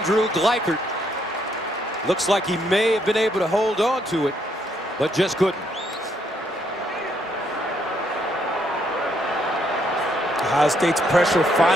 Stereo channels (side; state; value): both; normal; correlation 0.72